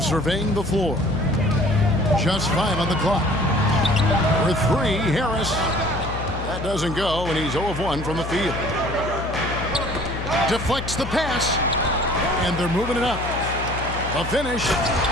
surveying the floor. Just 5 on the clock. For 3, Harris. That doesn't go, and he's 0 of 1 from the field. Deflects the pass, and they're moving it up. The finish,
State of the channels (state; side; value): noise; left; hum, 7 dB below the sound